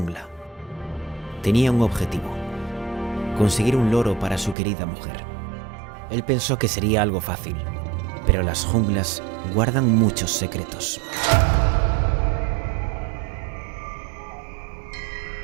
Tenía un objetivo: conseguir un loro para su querida mujer. Él pensó que sería algo fácil, pero las junglas guardan muchos secretos.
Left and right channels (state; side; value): drops out; left; at 4.5 s